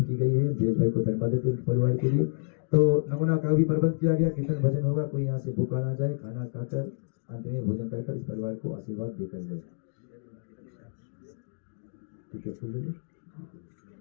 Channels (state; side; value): silent; right; digital silence